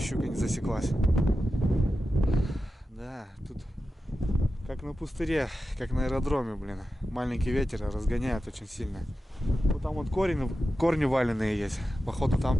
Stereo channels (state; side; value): normal; both; correlation 0.92